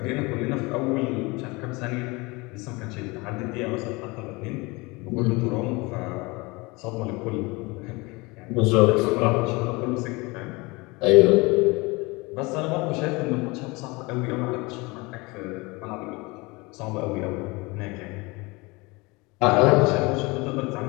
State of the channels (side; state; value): right; quieter; 25.1 dB